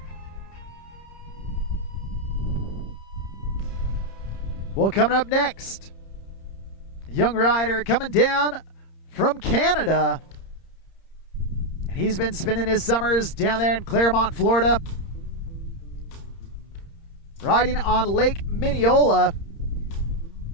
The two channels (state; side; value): late; right; 30 ms